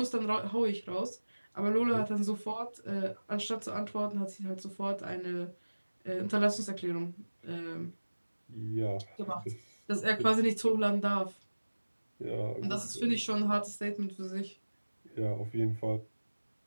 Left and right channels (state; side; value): inverted; both; correlation -1.00